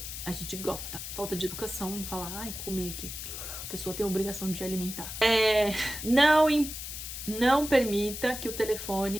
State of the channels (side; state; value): left; noise; hiss, 8 dB below the sound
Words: A gente gosta. Falta de educação, não falar, comi aqui. A pessoa tem a obrigação de alimentar. Não permita que o telefone